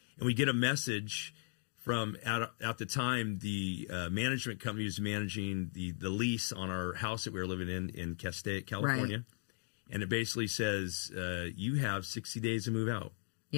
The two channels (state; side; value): silent; right; 53 dB below the other